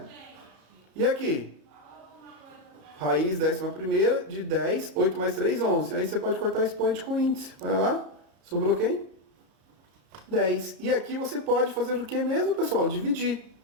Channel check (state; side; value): late; left; 33 ms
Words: E aqui? Raiz 10ª de 10, 8 mais 3, 11. Aí você pode cortar expoente com índice. Olha lá. Sobrou quem? 10. E aqui você pode fazer o que mesmo, pessoal? Dividir.